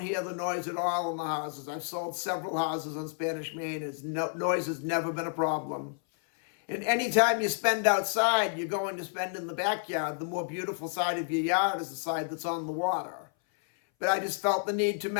hear the noise at all in the houses. I've sold several houses on Spanish Main. Noise has never been a problem. And anytime you spend outside, you're going to spend in the backyard. The more beautiful side of your yard is the side that's on the water. But I just felt the need to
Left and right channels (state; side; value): silent; right; 58 dB below the other